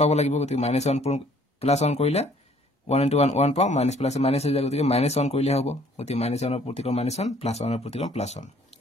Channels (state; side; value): normal; both; correlation 0.59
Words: পাব লাগিব গতিকে -1 পূৰণ +1 কৰিলে 1 * 1 1 পাও মাইনাছ প্লাস মাইনাছ হৈ যায় গতিকে -1 কৰিলে হ'ব গতিকে -1 ৰ প্ৰতিক্ৰম -1 +1 ৰ প্ৰতিক্ৰম +1